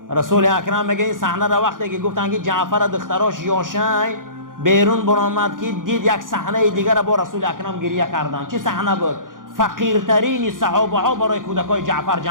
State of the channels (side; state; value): left; late; 0.89 ms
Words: رسول اکرم میگه این صحنه را وقتی که گفتن که جعفر دختراش یاش های بیرون برآمد که دید یک صحنه دیگر با رسول اکرم گریه کردن. چه صحنه بود؟ فقیرترین صحابه ها برای کودکای جعفر